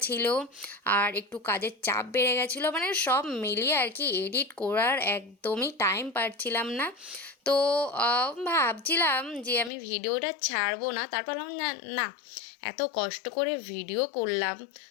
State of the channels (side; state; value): right; drops out; at 9.7 s